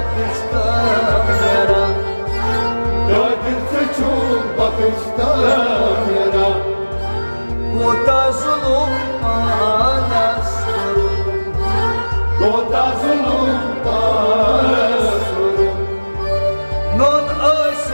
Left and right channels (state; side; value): inverted; both; correlation -1.00